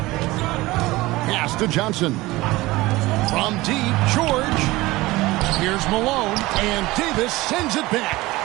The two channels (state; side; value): quieter; left; 19.7 dB